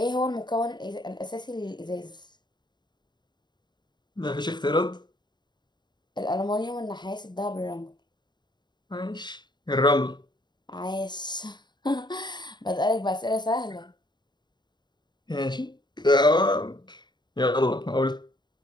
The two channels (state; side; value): late; right; 0.21 ms